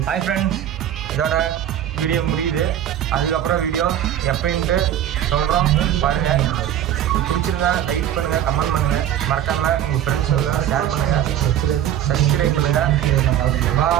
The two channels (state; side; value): quieter; left; 11.0 dB